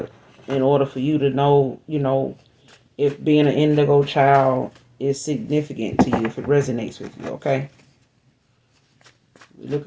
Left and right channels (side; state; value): both; identical; correlation 1.00